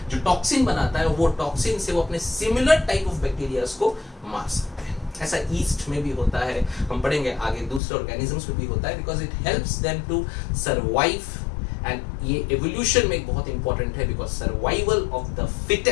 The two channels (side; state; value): right; drops out; at 7.8 s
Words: जो टॉक्सिन बनाता है. वो टॉक्सिन से वो अपने सिमिलर टाइप ऑफ बैक्टीरियाज को मार सकते हैं. ऐसा ईस्ट में भी होता है, हम पढ़ेंगे आगे, दूसरे ऑर्गेनिजम्स में भी होता है, because it helps them to survive. And ये एवोल्यूशन में बहुत इंपॉर्टेंट है, because survival of the